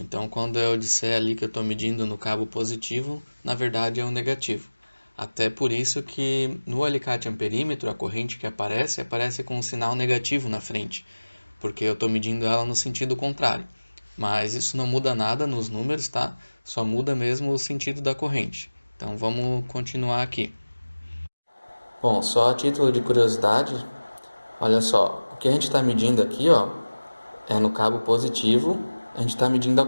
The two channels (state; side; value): inverted; both; correlation -1.00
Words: Então, quando eu disser ali que eu estou medindo no cabo positivo, na verdade é o negativo. Até por isso que no alicate amperímetro, a corrente que aparece com um sinal negativo na frente, porque eu estou medindo ela no sentido contrário. Mas isso não muda nada nos números, tá? Só muda mesmo o sentido da corrente. Então, vamos continuar aqui. Bom, só a título de curiosidade, olha só, o que a gente está medindo aqui, ó, é no cabo positivo, a gente está medindo a